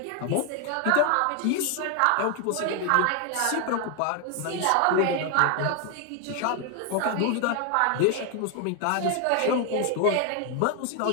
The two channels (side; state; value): both; different; correlation 0.01